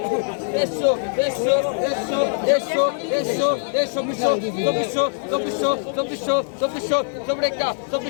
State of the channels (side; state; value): right; silent; 56 dB below the other